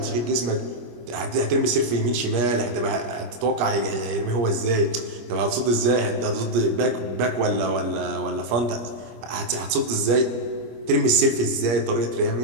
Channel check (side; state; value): left; late; 25 ms